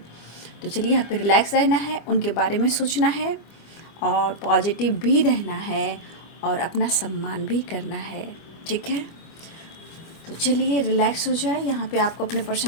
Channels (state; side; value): late; right; 25 ms